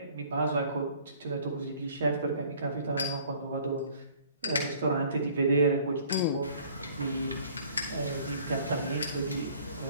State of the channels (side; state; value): both; inverted; correlation -0.55